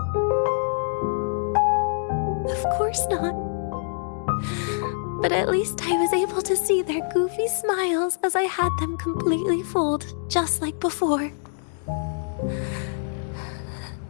Of course not. But at least I was able to see their goofy smiles as I had them completely fooled, just like before.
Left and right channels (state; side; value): silent; right; digital silence